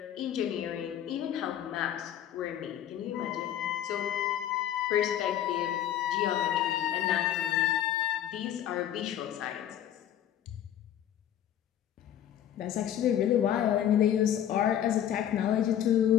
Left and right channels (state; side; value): quieter; right; 10.8 dB